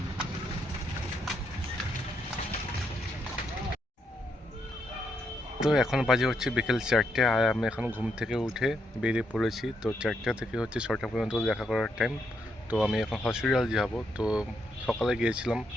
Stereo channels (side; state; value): both; normal; correlation 0.78